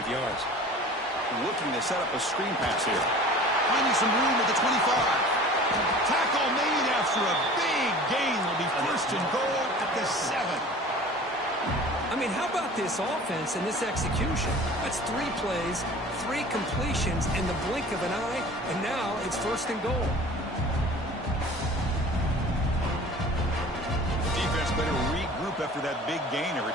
yards. Looking to set up a screen pass here. Finding some room at the 25. Tackle made after a big gain. Will be first and goal at the 7. I mean, how about this offense and this execution? That's 3 plays, 3 completions in the blink of an eye, and now it's first and goal. The defense better regroup after that big gainer.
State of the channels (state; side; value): normal; both; correlation 0.43